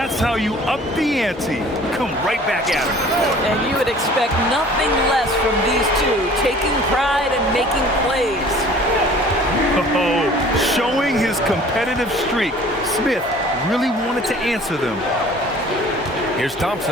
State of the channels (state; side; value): normal; both; correlation 0.49